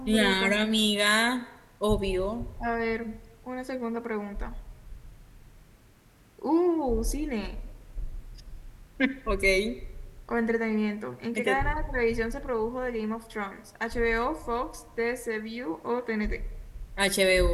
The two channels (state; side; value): identical; both; correlation 1.00